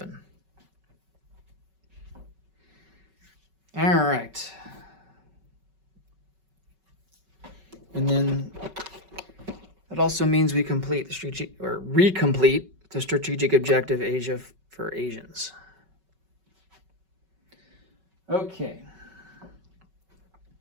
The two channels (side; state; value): left; late; 5.3 ms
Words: All right. And then that also means we complete the strategic, or recomplete the strategic objective Asia for Asians. Okay.